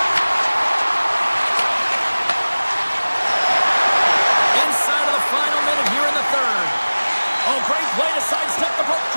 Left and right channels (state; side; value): inverted; both; correlation -1.00